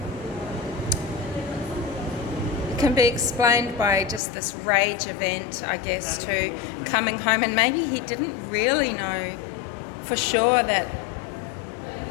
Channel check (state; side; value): drops out; right; at 4.2 s